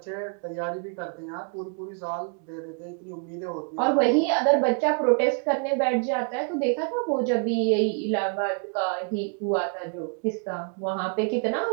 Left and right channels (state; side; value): quieter; left; 39.6 dB